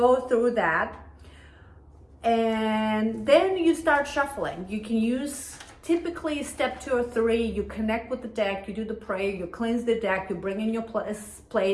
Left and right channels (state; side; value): identical; both; correlation 1.00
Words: through that. And then you start shuffling. You can use typically step 2 or 3, you connect with the deck, you do the prayer, you cleanse the deck, you bring in your